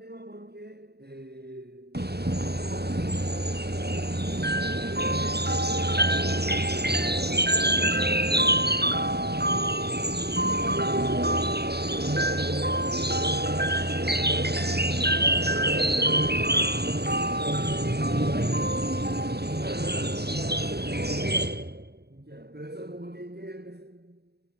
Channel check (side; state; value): left; late; 0.47 ms